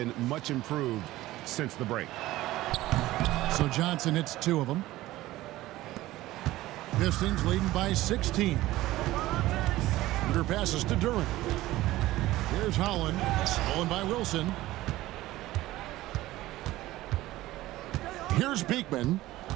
much improved since the break. So Johnson hits 2 of them. Pistons leading by 16. Shooter passes to Duran. Here's Holland. Stolen by Wilson. Here's Beekman.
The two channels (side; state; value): left; quieter; 16.7 dB